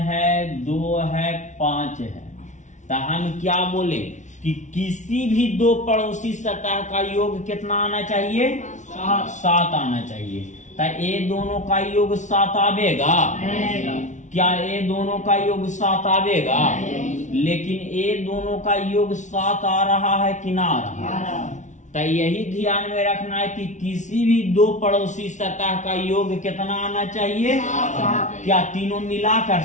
2 है, 5 है, तो हम क्या बोले कि किसी भी दो पड़ोसी सतह का योग कितना आना चाहिए? 7 आना चाहिए। तो ये दोनों का योग 7 आवेगा? क्या ये दोनों का योग 7 आवेगा? लेकिन ये दोनों का योग 7 आ रहा है कि ना आ रहा है? तो यही ध्यान में रखना है कि किसी भी दो पड़ोसी सतह का योग कितना आना चाहिए? क्या तीनों मिलाकर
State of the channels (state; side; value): late; right; 0.36 ms